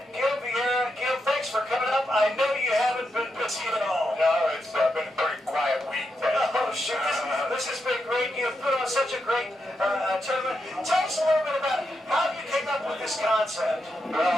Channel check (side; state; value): both; normal; correlation 0.85